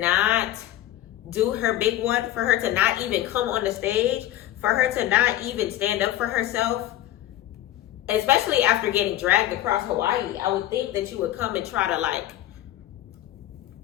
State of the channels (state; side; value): quieter; right; 13.9 dB